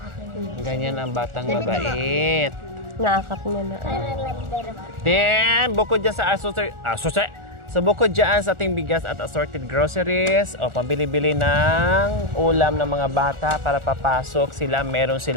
Ganyan ang batang mabait. naakap niya na. Then, bukod dyan sa So, bukod dyan sa ating bigas at assorted groceries, o pambili-bili ng ulam ng mga bata para papasok sila, meron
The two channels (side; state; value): left; late; 1.4 ms